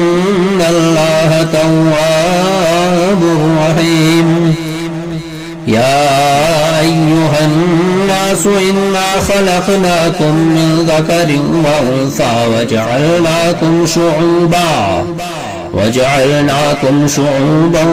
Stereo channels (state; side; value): identical; both; correlation 1.00